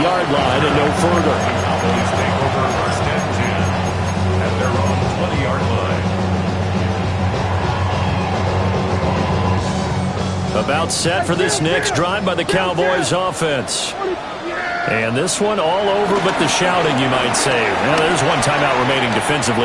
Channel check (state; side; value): identical; both; correlation 1.00